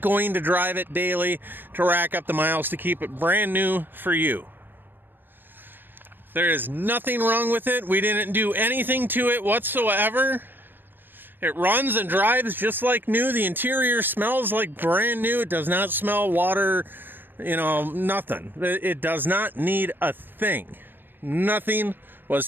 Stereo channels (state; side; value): late; left; 0.095 ms